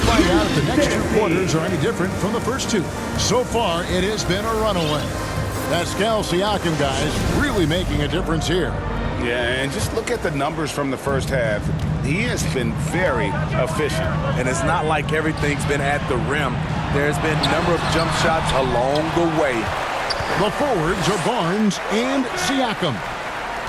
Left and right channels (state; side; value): identical; both; correlation 1.00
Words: out if the next two quarters are any different from the first two. So far, it has been a runaway. Pascal Siakam, guys, really making a difference here. Yeah, and just look at the numbers from the first half. He has been very efficient. And it's not like everything's been at the rim. There's been a number of jump shots along the way. The forwards are Barnes and Siakam.